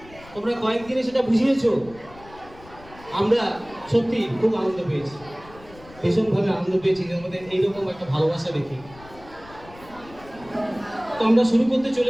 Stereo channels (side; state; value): left; noise; rumble, 21 dB below the sound